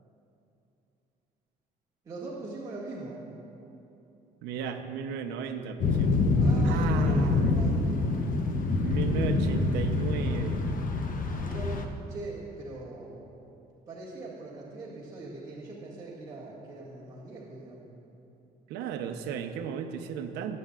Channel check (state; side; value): normal; both; correlation 0.51